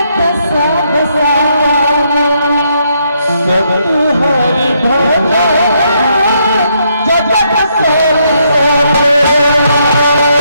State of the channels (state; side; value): inverted; both; correlation -0.75